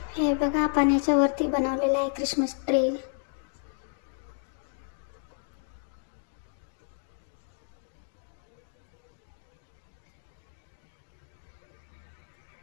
हे बघा पाण्याच्या वरती बनवलेलं आहे ख्रिसमस ट्री.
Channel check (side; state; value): right; silent; digital silence